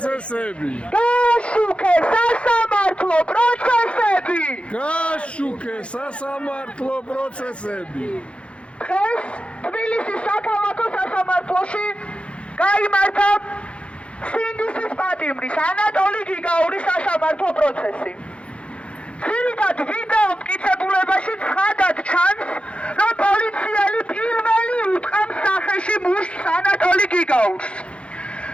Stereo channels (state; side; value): late; right; 0.060 ms